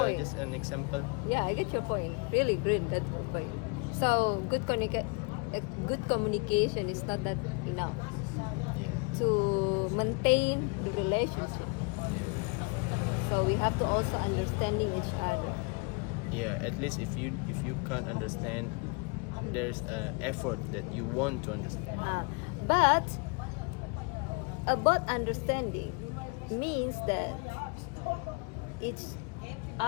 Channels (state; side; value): quieter; right; 32.5 dB